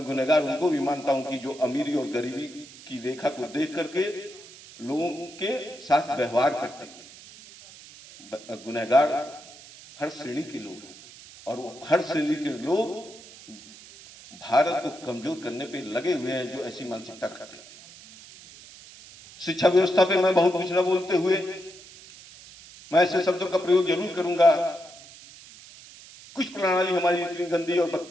गुनहगार उनको भी मानता हूं कि जो अमीरी और गरीबी की रेखा को देख करके लोगों के साथ व्यवहार करते थे। गुनहगार हर श्रेणी के लोग हैं, और वो हर श्रेणी के लोग भारत को कमजोर करने पे लगे हुए हैं जो ऐसी मानसिकता रखते थे। शिक्षा व्यवस्था पे मैं बहुत कुछ न बोलते हुए मैं ऐसे शब्दों का प्रयोग जरूर करूंगा। कुछ प्रणाली हमारी इतनी गंदी और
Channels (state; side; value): noise; right; hiss, 19 dB below the sound